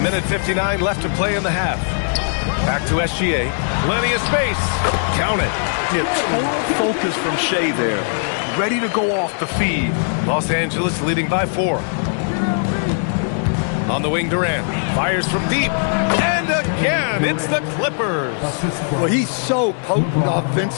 59 left to play in the half. Back to SGA. Plenty of space. Count it. Yeah, total focus from Shai there. Ready to go off the feed. Los Angeles leading by 4. On the wing, Durant. Fires from deep. And again, it's the Clippers. Well, he's so potent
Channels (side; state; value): right; silent; 66 dB below the other